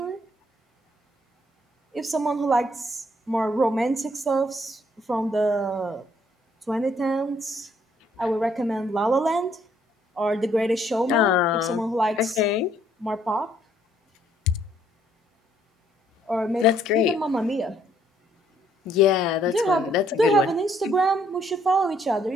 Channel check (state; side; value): normal; both; correlation 0.67